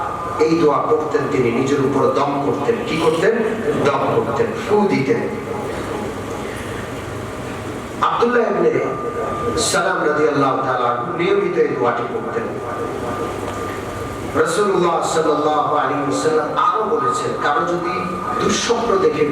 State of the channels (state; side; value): identical; both; correlation 1.00